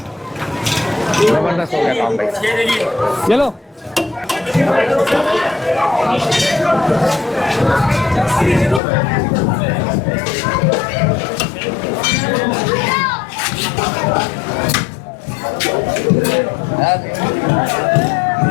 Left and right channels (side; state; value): right; drops out; at 8.8 s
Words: जबरदस्त हो गया काम भाई। चलो